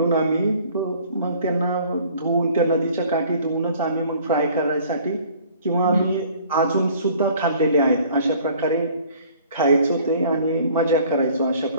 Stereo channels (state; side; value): inverted; both; correlation -0.54